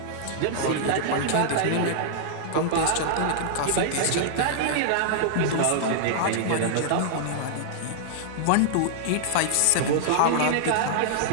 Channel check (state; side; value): different; both; correlation -0.01